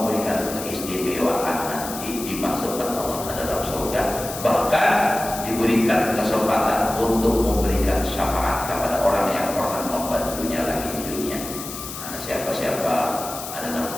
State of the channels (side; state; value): left; noise; hiss, 9 dB below the sound